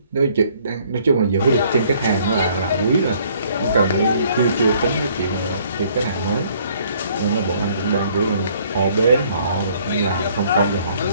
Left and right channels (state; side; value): inverted; both; correlation -0.62